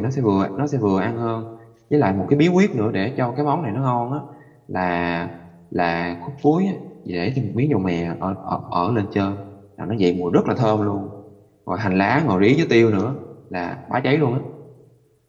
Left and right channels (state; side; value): identical; both; correlation 1.00